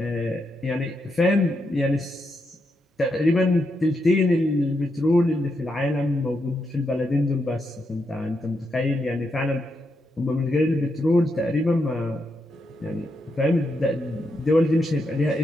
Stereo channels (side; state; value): both; normal; correlation 0.82